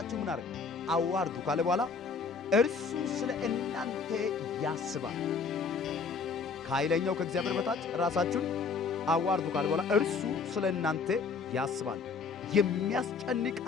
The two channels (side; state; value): right; quieter; 5.1 dB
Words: ምን አድርጉ? አዋርዱ ካለ በኋላ እርሱ ስለ እናንተ ያስባል። ከኃይለኛው ከእግዚአብሔር በታች ራሳችሁን አዋርዱ ካለ በኋላ እርሱ ስለ እናንተ ያስባል።